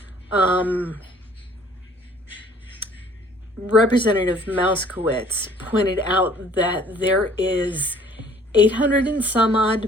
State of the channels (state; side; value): normal; both; correlation 0.56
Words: Representative Mouskowitz pointed out that there is $800 and some